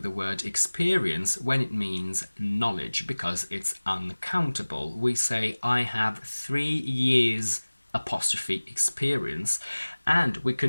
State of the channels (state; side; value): inverted; both; correlation -1.00